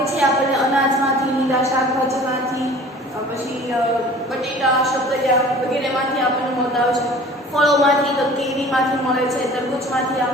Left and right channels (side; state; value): both; normal; correlation 0.46